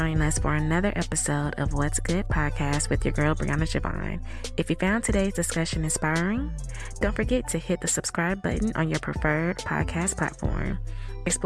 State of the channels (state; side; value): normal; both; correlation 0.98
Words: us for another episode of What's Good Podcast with your girl, Brianna Javon. If you found today's discussion inspiring, don't forget to hit the subscribe button on your preferred podcast platform.